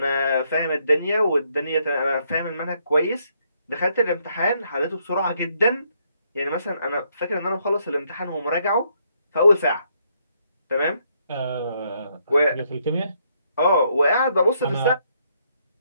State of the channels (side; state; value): both; inverted; correlation -0.73